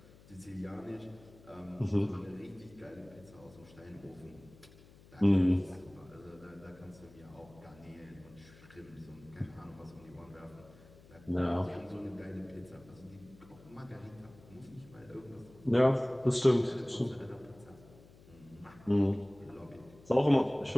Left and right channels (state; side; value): noise; left; hum, 23 dB below the sound